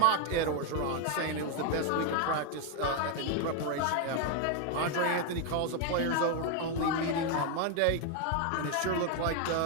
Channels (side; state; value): both; different; correlation 0.01